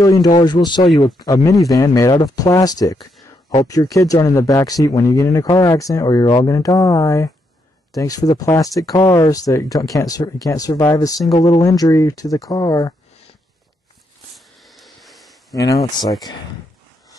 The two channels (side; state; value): both; normal; correlation 0.79